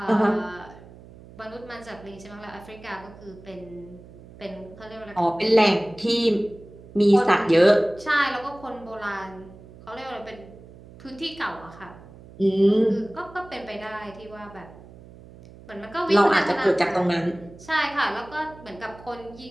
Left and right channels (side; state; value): right; noise; hum, 20 dB below the sound